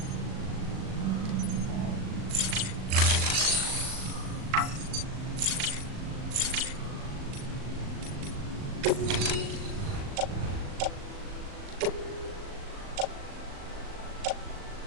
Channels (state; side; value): late; left; 38 ms